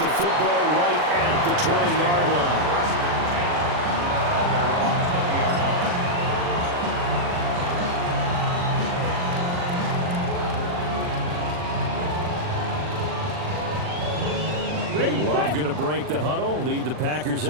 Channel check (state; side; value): late; left; 40 ms